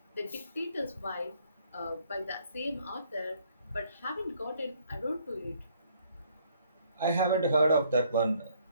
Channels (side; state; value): both; inverted; correlation -0.65